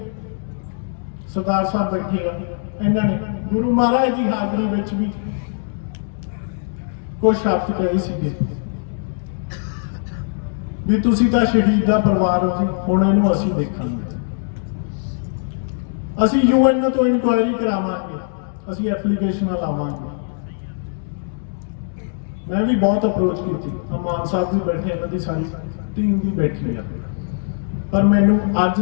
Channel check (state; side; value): silent; right; digital silence